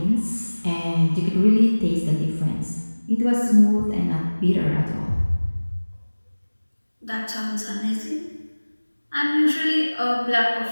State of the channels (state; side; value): inverted; both; correlation -1.00